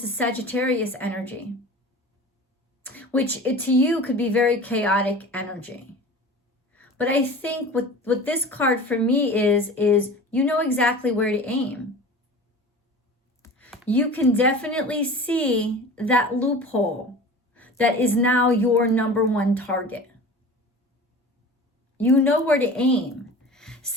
is Sagittarius energy, which to you could be very chaotic energy. But I think what this card for me is you know exactly where to aim. You can definitely see that loophole that is now your number one target. You know where to aim.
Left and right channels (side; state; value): both; normal; correlation 0.37